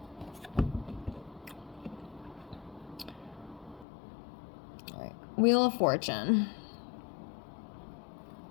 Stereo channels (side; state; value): right; drops out; at 3.9 s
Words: All right, Wheel of Fortune.